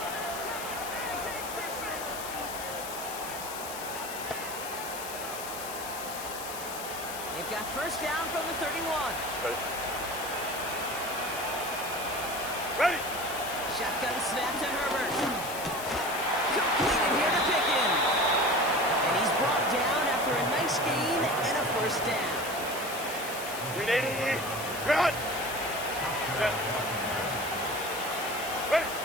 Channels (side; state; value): left; noise; hiss, 9 dB below the sound